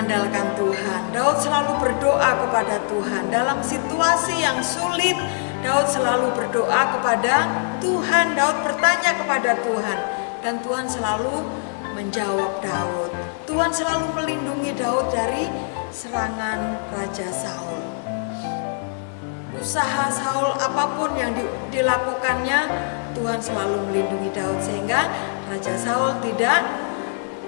Tuhan. Daud selalu berdoa kepada Tuhan. Dalam situasi yang sulit, Daud selalu berdoa kepada Tuhan. Daud bertanya kepada Tuhan dan Tuhan selalu menjawab Daud. Tuhan selalu melindungi Daud dari serangan Raja Saul. Usaha Saul apapun yang dilakukannya, Tuhan selalu melindungi Daud sehingga Raja Saul tidak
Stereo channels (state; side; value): silent; right; digital silence